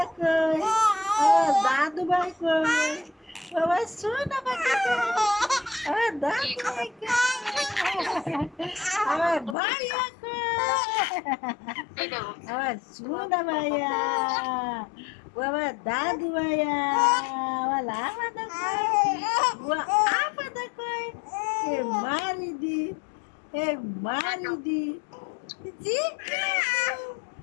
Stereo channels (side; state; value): right; drops out; at 9.6 s